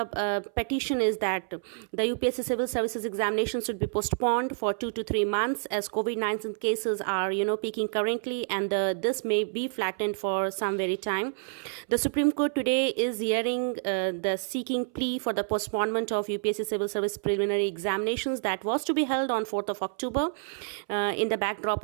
petition is that the UPSC Civil Services examination should be postponed for 2 to 3 months as COVID-19 cases are peaking currently, and this may be flattened for some very time. The Supreme Court today is hearing the seeking plea for the postponement of UPSC Civil Service preliminary examinations that was to be held on 4th of October in the backdrop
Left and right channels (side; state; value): left; silent; 59 dB below the other